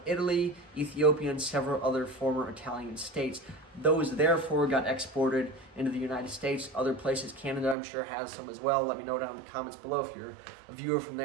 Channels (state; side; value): drops out; left; at 7.8 s